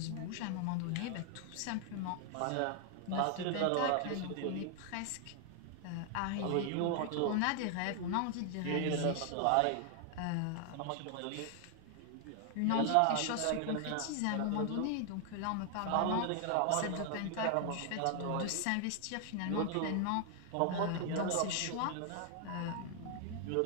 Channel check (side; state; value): both; different; correlation 0.00